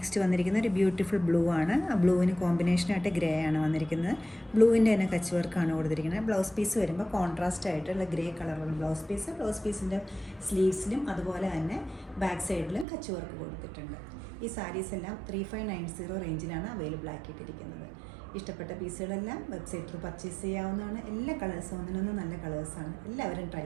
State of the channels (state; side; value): drops out; left; at 12.9 s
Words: വന്നിരിക്കുന്ന ഒരു ബ്യൂട്ടിഫുൾ ബ്ലൂ ആണ്. ആ ബ്ലൂവിന് കോമ്പിനേഷനായിട്ട് ഗ്രേ ആണ് വന്നിരിക്കുന്നത്. ബ്ലൂവിൻ്റെ തന്നെ കച്ച് വർക്കാണ് കൊടുത്തിരിക്കുന്നത്. ബ്ലൗസ് പീസ് വരുമ്പോൾ കോൺട്രാസ്റ്റ് ആയിട്ടുള്ള ഗ്രേ കളറുള്ള ബ്ലൗസ് പീസിൻ്റെ സ്ലീവ്സിലും അതുപോലെ തന്നെ ബാക്ക് സൈഡിലും കച്ച് വർക്ക് കൊടുത്തിട്ടുണ്ട്. ഈ സാരീസ് എല്ലാം 3590 റേഞ്ചിലാണ് അവൈലബിൾ ആക്കിയിട്ടിരിക്കുന്നത്. ഇഷ്ടപ്പെട്ട പീസുകളെല്ലാം വെബ്സൈറ്റിൽ പർച്ചേസ് ചെയ്യാവുന്നതാണ്. എല്ലാ കളേഴ്സും ഒന്നിനൊന്നും നല്ല കളേഴ്സാണ്. എല്ലാവരും ട്രൈ